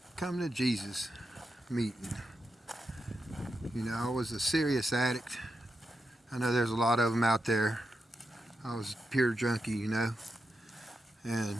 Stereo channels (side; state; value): both; normal; correlation 0.87